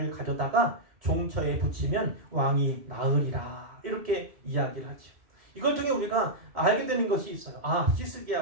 가져다가 종처에 붙이면 왕이 나으리라, 이렇게 이야기를 하죠. 이걸 통해 우리가 알게 되는 것이 있어요.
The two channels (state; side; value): late; left; 2.1 ms